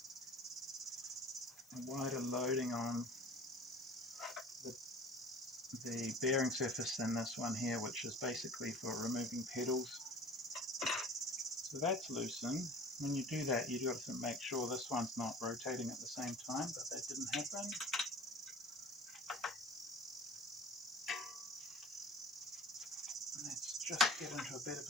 loading on the bearing surface than this one here, which is basically for removing pedals. So that's loosened. When you do that, you've got to make sure this one's not rotating at the same time, but that didn't happen. Let's just get into a better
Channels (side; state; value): left; noise; hiss, 25 dB below the sound